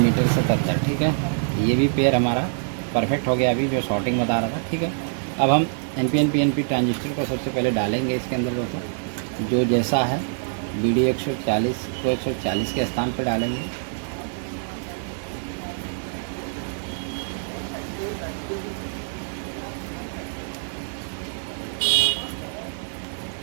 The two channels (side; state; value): left; silent; digital silence